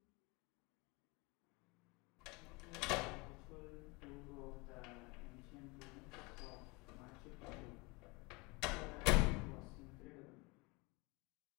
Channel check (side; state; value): right; quieter; 26.5 dB